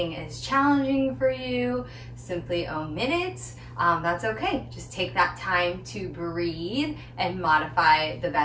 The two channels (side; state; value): both; identical; correlation 1.00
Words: is challenging for you, simply omit it. That's okay. Just take that time to breathe and modify the